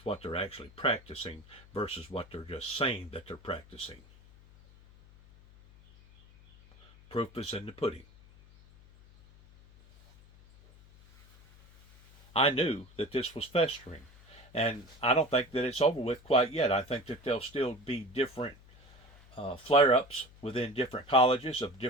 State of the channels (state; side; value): noise; left; hum, 24 dB below the sound